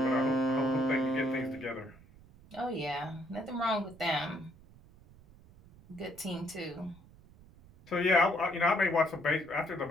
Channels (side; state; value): right; noise; rumble, 23 dB below the sound